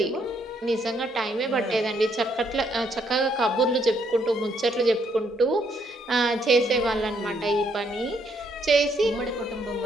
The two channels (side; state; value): both; normal; correlation 0.71